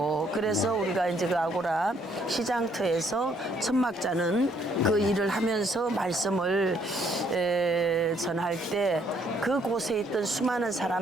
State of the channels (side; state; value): both; normal; correlation 0.67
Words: 그래서 우리가 이제 그 아고라 시장터에서 천막자는 그 일을 하면서 말씀을 전할 때 그곳에 있던 수많은